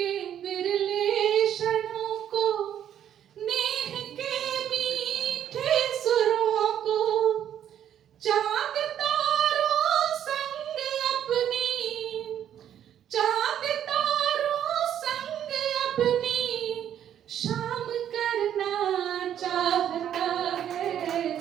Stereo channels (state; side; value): quieter; left; 10.1 dB